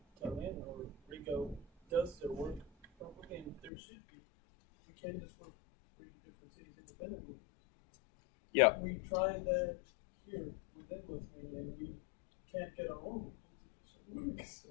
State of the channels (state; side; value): drops out; right; at 3.7 s